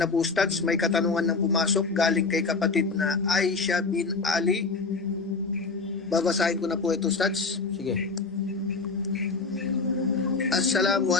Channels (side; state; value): right; quieter; 4.1 dB